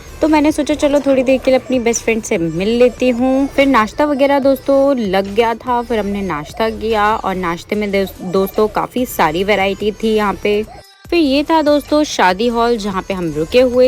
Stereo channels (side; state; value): both; identical; correlation 1.00